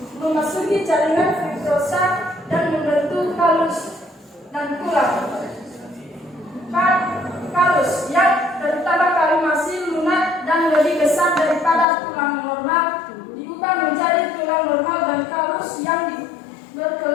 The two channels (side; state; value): right; drops out; at 11.9 s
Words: memasuki jaringan fibrosa dan membentuk kalus dan tulang. Kalus yang terutama kalau masih lunak dan lebih besar daripada tulang normal diubah menjadi tulang normal dan kalus yang